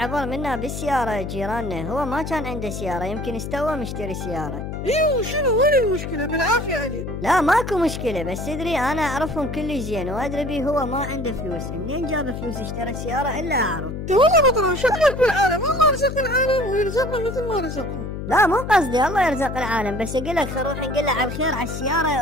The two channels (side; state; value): left; noise; hum, 6 dB below the sound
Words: منا بالسيارة جيراننا، هو ما كان عنده سيارة، يمكن استوى مشتري سيارة. ايوه شنو وين المشكلة؟ بالعافية عليك. لا ماكو مشكلة، بس تدري انا اعرفهم كل زين، وادري بيه هو ما عنده فلوس، منين جاب فلوس اشترى سيارة الا اعرف. والله بطل شغلك بالعالم، الله رزق العالم ويرزقنا مثل ما رزقهم. لا مو قصدي الله يرزق العالم، بس اقول لك خل نروح نقول له على الخير على